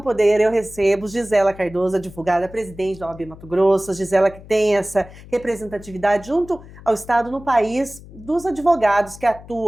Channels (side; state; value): left; noise; hum, 18 dB below the sound